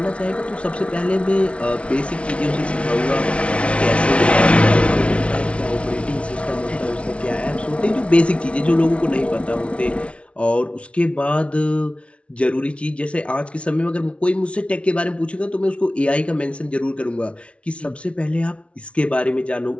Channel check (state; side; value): late; right; 0.061 ms